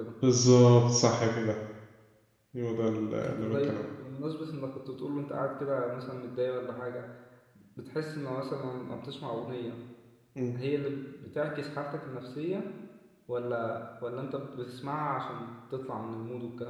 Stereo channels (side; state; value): both; identical; correlation 1.00